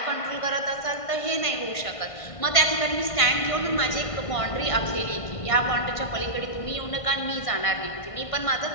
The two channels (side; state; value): right; late; 1.5 ms